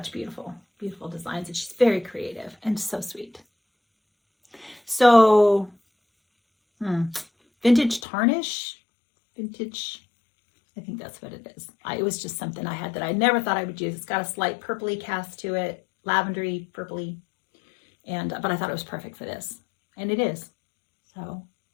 beautiful, beautiful designs, and she's very creative and so sweet. So, vintage tarnish, vintage, I think that's what it is. It was just something I had that I never thought I would use. It's got a slight purpley cast to it, lavendery, purpley, but I thought it was perfect for this, and it is. So,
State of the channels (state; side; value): drops out; right; at 8.0 s